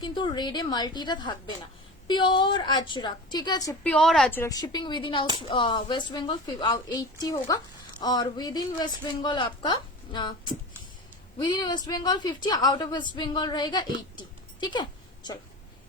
কিন্তু রেডে মাল্টিটা থাকবে না। प्योर अजरक, ठीक है, pure Ajrak. Shipping within West Bengal 80 होगा, और विद इन वेस्ट बंगाल आपका within West Bengal 50, out of West Bengal रहेगा 80, ठीक है। चलो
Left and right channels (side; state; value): both; normal; correlation 0.31